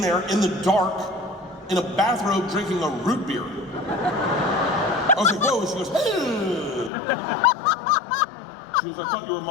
dark, in a bathrobe drinking a root beer. I was like, whoa, and she goes, hey. She goes, I thought you were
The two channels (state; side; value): drops out; right; at 6.9 s